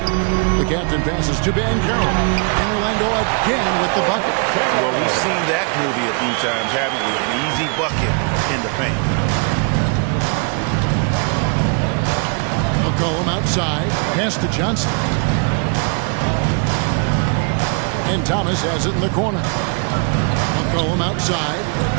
The captain passes to Banchero. And Orlando again with the bucket. Well, we've seen that movie a few times, haven't we? An easy bucket in the paint. McCollum outside, pass to Johnson. And Thomas has it in the corner. McCollum outside.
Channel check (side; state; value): left; quieter; 38.5 dB